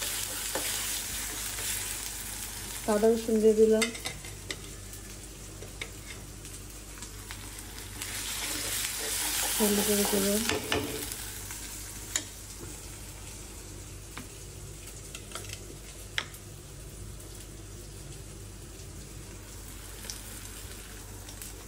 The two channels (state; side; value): identical; both; correlation 1.00